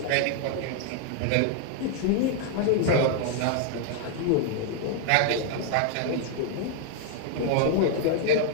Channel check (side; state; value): both; different; correlation 0.00